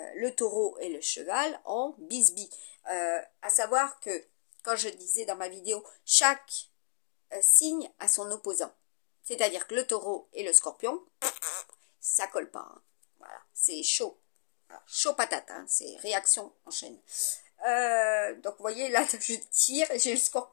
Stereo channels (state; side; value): silent; right; digital silence